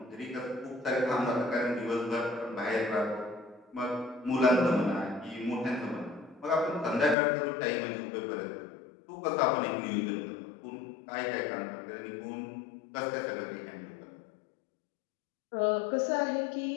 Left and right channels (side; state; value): right; drops out; at 7.2 s